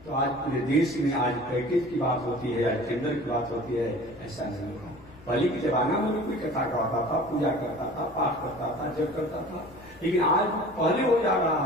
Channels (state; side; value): noise; left; rumble, 25 dB below the sound